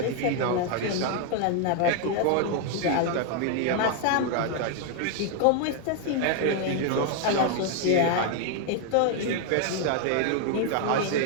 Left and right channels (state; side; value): different; both; correlation 0.00